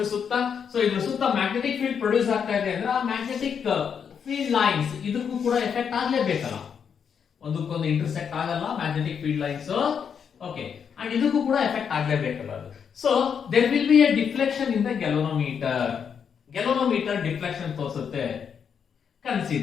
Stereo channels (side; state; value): right; quieter; 7.2 dB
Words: ಸುತ್ತ. ಸೊ ಇದ್ರ ಸುತ್ತ ಮ್ಯಾಗ್ನೆಟಿಕ್ ಫೀಲ್ಡ್ ಪ್ರೊಡ್ಯೂಸ್ ಆಗ್ತಾ ಇದೆ ಅಂದ್ರೆ ಆ ಮ್ಯಾಗ್ನೆಟಿಕ್ ಫೀಲ್ಡ್ ಲೈನ್ಸ್ ಇದಕ್ಕೂ ಕೂಡ ಎಫೆಕ್ಟ್ ಆಗ್ಲೇಬೇಕಲ್ಲ, ಒಂದಕ್ಕೊಂದು ಇಂಟರ್ಸೆಕ್ಟ್ ಆಗಲ್ಲ magnetic field lines, okay, and ಇದಕ್ಕೂ ಕೂಡ ಎಫೆಕ್ಟ್ ಆಗ್ಲೇಬೇಕಲ್ಲ ಅದು. So there will be a deflection in the galvanometer. Galvanometer deflection ತೋರಿಸುತ್ತೆ.